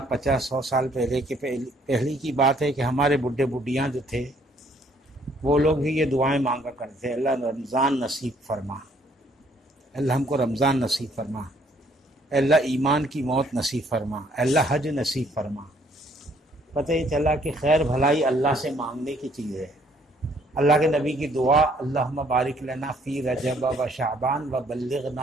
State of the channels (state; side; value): normal; both; correlation 0.64